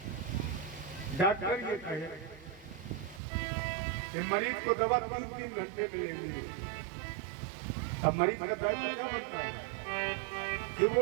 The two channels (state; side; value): drops out; left; at 3.2 s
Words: डॉक्टर ये कहे कि मरीज को दवा 3-3 घंटे में लेनी है, अब मरीज का दायित्व क्या बनता है कि